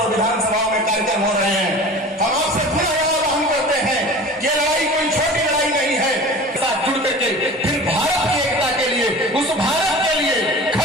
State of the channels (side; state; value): both; normal; correlation 0.38